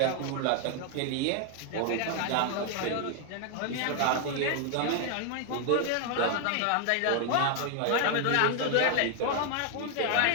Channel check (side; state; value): both; different; correlation 0.00